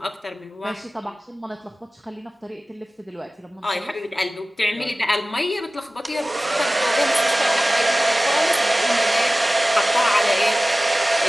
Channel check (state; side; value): normal; both; correlation 0.97